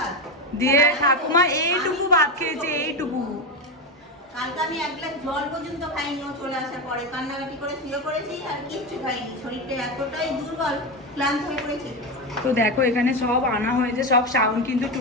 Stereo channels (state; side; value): normal; both; correlation 0.15